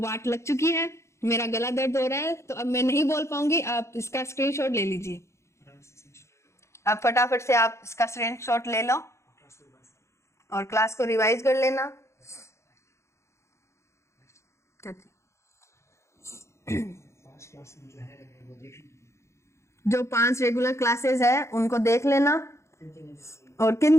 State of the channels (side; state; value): right; late; 0.14 ms